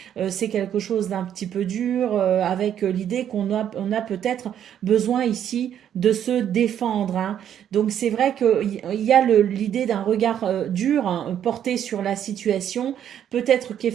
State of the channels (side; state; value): left; quieter; 9.8 dB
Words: C'est quelque chose d'un petit peu dur, avec l'idée on a peut-être besoin ici de se défendre, hein. Donc c'est vrai qu'il y a l'idée d'un regard dur, hein, porté sur la situation. Peut-être